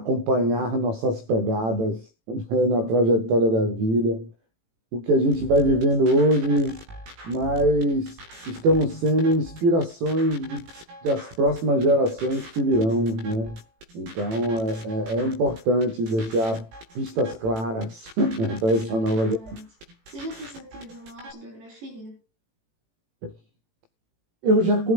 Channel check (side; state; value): left; late; 18 ms